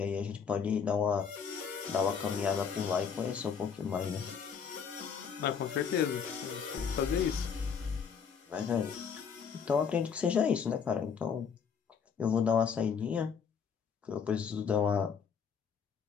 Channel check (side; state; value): right; quieter; 6.6 dB